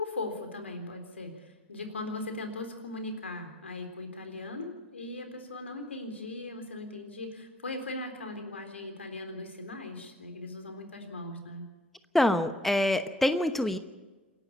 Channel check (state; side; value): normal; both; correlation 0.57